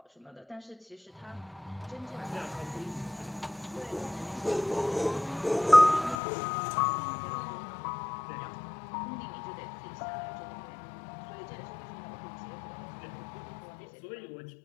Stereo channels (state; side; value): drops out; right; at 6.2 s